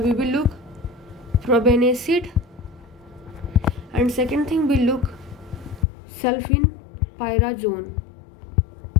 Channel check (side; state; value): right; drops out; at 5.9 s